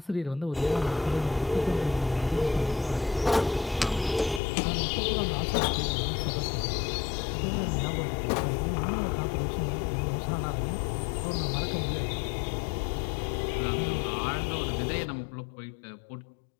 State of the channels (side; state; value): right; drops out; at 4.4 s